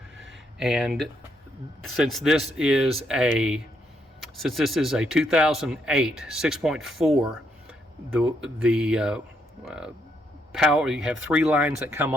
and since this is a 2008 6.4, the power, you have 3 lines that come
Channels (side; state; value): both; normal; correlation 0.75